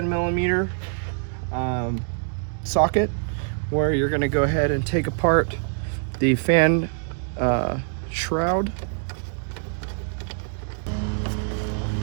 socket, where you're going to go ahead and take apart the fan shroud.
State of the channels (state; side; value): silent; left; digital silence